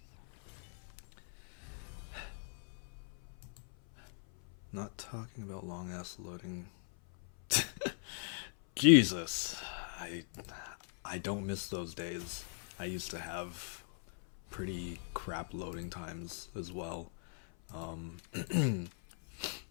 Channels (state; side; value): silent; right; 52 dB below the other